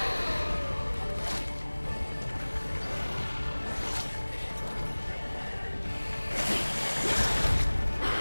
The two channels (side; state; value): both; inverted; correlation -1.00